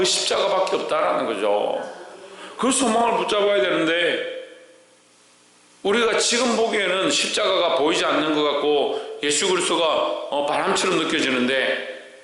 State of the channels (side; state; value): both; identical; correlation 1.00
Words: 십자가밖에 없다라는 거죠. 그 소망을 붙잡아야 되는데, 우리가 지금 보기에는 십자가가 보이지 않는 것 같고 예수 그리스도가 바람처럼 느껴지는데,